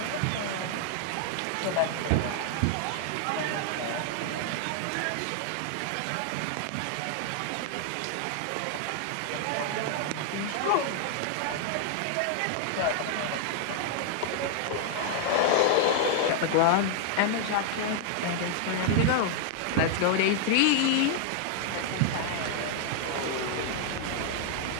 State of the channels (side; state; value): both; different; correlation 0.00